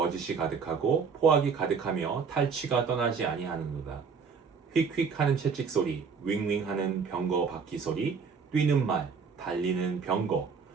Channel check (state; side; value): quieter; left; 5.7 dB